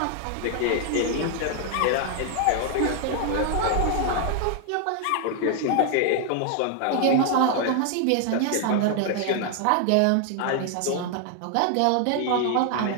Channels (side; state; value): both; different; correlation 0.00